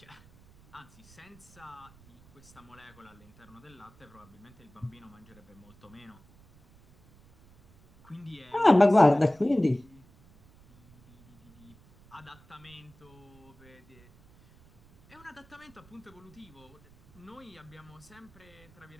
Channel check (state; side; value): noise; right; rumble, 26 dB below the sound